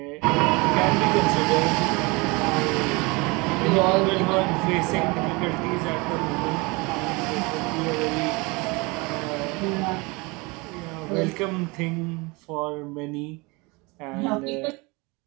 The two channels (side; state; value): left; quieter; 26.2 dB